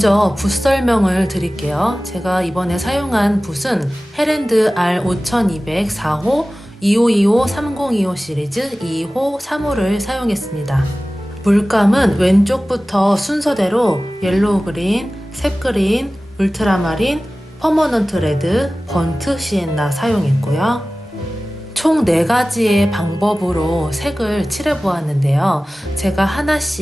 붓 설명을 드릴게요. 제가 이번에 사용한 붓은 헤랜드 R5200 4호 2525 3025 시리즈 2호 3호를 사용했습니다. 물감은 왼쪽부터 순서대로 옐로우 그린, 셉 그린, 울트라마린, 퍼머넌트 레드, 번트 시엔나 사용했고요. 총 4가지의 방법으로 색을 칠해보았는데요. 제가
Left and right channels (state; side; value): normal; both; correlation 0.97